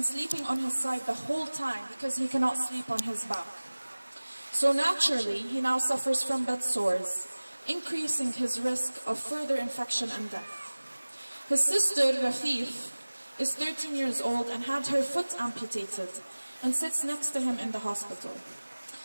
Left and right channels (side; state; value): both; inverted; correlation -1.00